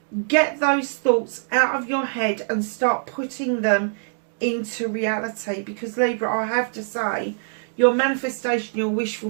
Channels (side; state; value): left; silent; digital silence